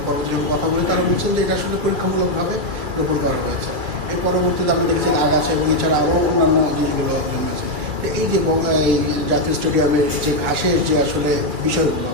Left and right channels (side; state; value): left; late; 2.3 ms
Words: পরবর্তীতে কথা বলে তারা বলছেন যে এটা আসলে পরীক্ষামূলকভাবে রোপণ করা হয়েছে। এর পরবর্তীতে আমরা দেখেছি আগাছ এবং এছাড়া আরও অন্যান্য জিনিসগুলো আছে। এই যে জাতীয় স্টেডিয়ামের যে ঘাসের যে আসলে বিষয়গুলো